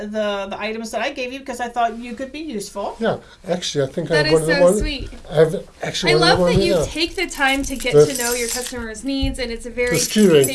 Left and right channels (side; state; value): both; identical; correlation 1.00